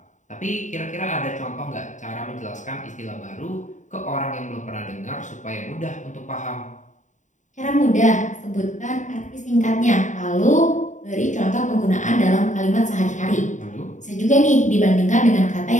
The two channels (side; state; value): right; late; 0.36 ms